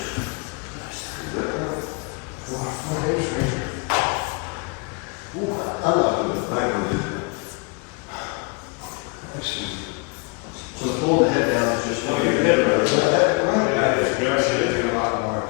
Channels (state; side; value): quieter; right; 32.0 dB